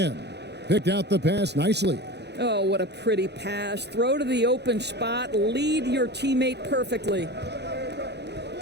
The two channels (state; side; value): late; left; 0.49 ms